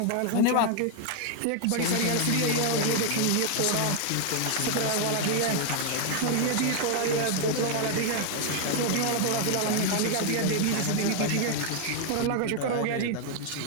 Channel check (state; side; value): different; both; correlation 0.00